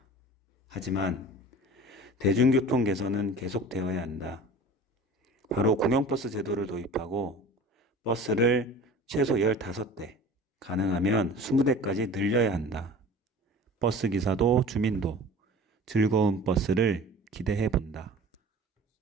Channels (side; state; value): both; normal; correlation 0.42